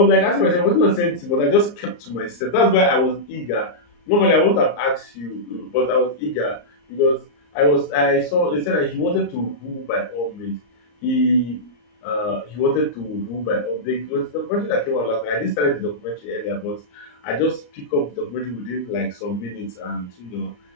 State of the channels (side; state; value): right; late; 34 ms